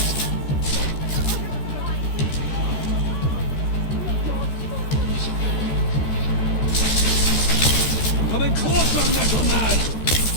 Coming closer, Metal Man!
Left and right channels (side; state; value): right; late; 14 ms